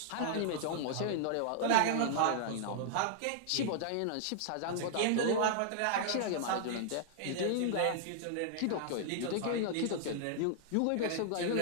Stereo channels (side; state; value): both; different; correlation -0.01